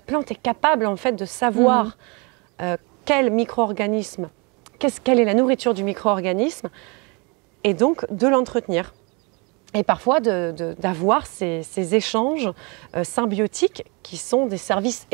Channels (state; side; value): quieter; left; 30.6 dB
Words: plante est capable, en fait, de savoir quel micro-organisme, quelle est la nourriture du micro-organisme, et donc de l'entretenir. Et parfois d'avoir ces échanges symbiotiques qui sont des services